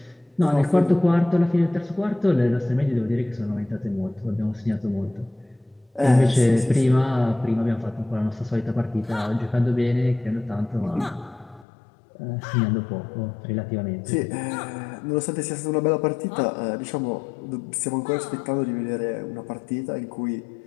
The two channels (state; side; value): drops out; right; at 11.7 s